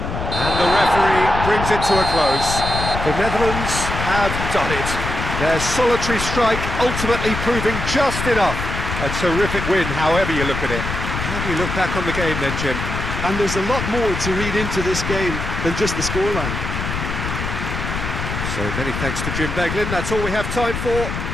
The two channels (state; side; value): noise; left; rumble, 4 dB below the sound